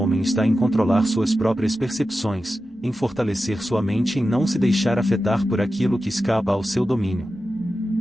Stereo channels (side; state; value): both; normal; correlation 0.92